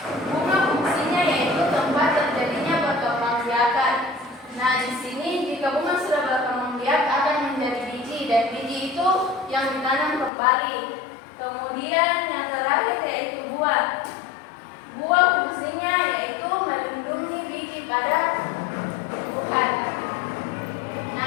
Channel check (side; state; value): right; drops out; at 10.3 s